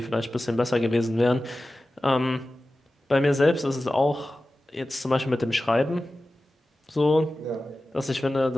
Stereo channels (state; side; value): normal; both; correlation 0.95